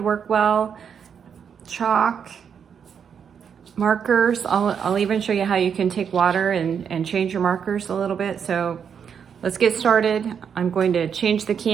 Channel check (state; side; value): quieter; left; 7.3 dB